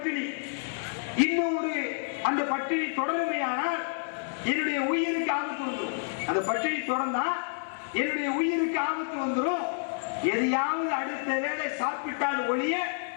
இன்னும் ஒரு அந்த பட்டினி தொடருமையானால் என்னுடைய உயிருக்கு ஆபத்து வந்துடும். அந்த பட்டினி தொடர்ந்தா என்னுடைய உயிருக்கு ஆபத்து வந்துடும். எதையாவது அடுத்த வேளை சாப்பிட்டால் ஒழிய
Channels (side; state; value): right; silent; 59 dB below the other